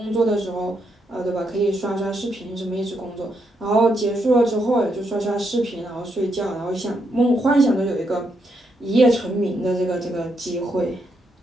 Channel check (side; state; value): both; normal; correlation 0.79